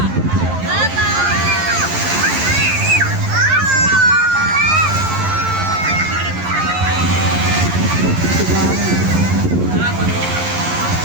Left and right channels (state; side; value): late; left; 11 ms